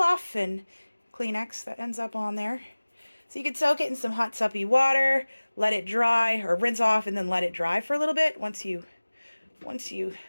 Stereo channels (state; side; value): inverted; both; correlation -1.00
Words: and Kleenex that ends up on there. So you could soak it in some hot suppy water, let it dry, or rinse off and then let it dry for a little bit once you